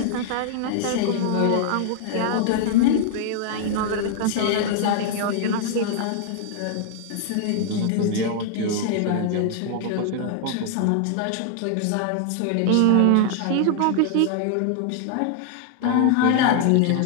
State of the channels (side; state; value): both; different; correlation 0.00